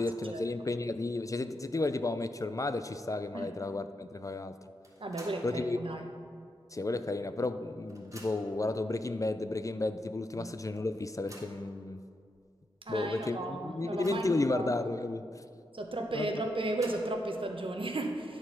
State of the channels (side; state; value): both; normal; correlation 0.82